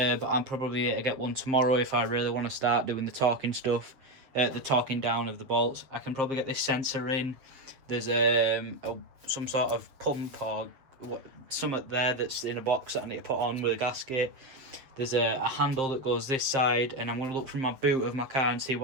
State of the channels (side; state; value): left; late; 7.5 ms